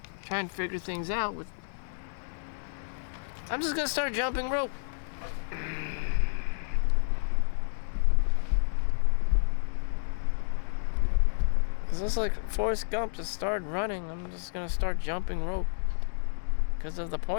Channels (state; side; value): silent; right; digital silence